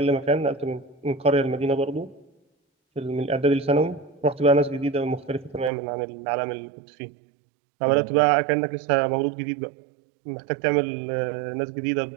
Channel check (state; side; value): drops out; left; at 5.7 s